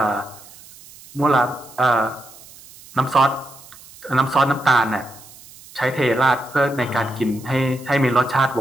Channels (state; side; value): noise; right; hiss, 21 dB below the sound